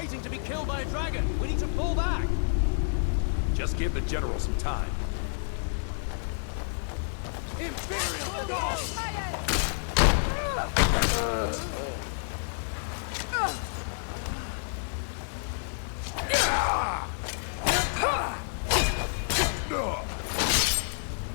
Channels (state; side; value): silent; right; digital silence